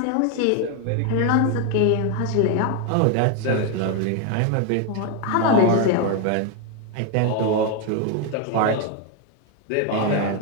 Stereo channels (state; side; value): different; both; correlation 0.01